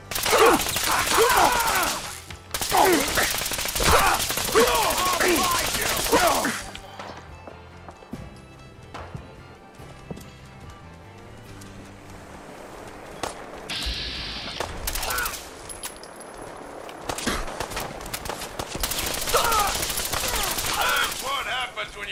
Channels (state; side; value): identical; both; correlation 1.00